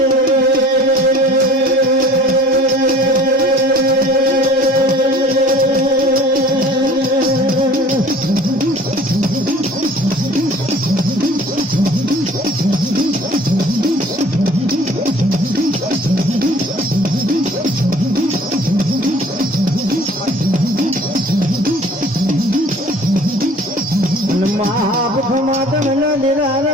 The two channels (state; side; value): normal; both; correlation 0.49